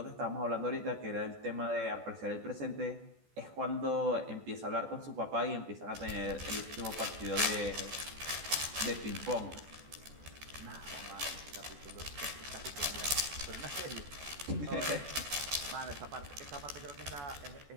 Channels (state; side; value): late; left; 14 ms